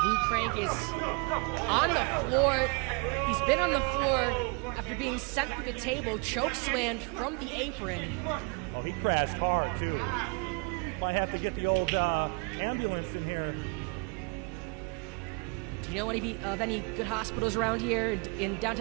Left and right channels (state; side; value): quieter; left; 33.8 dB